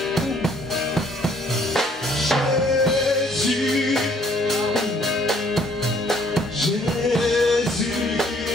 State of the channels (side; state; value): both; normal; correlation 0.62